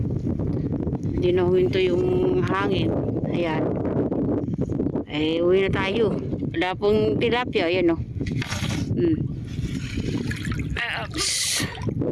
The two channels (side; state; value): both; identical; correlation 1.00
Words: Hindi na huminto yung hangin. Ayan. Ay, uwi na tayo. Wala pong tilapia. Ayan o. Ups.